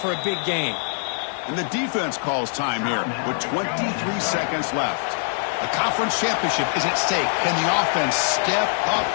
a big gain. And the defense calls time here with 23 seconds left. A conference championship is at stake. Can the offense step up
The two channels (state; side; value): silent; right; 63 dB below the other